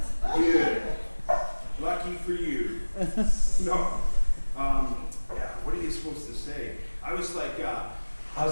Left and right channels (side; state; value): both; inverted; correlation -1.00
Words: Good. Lucky for you. No. What are you supposed to say? I was